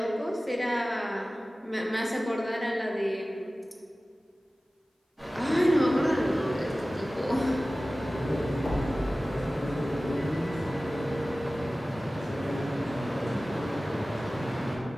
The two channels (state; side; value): normal; both; correlation 0.97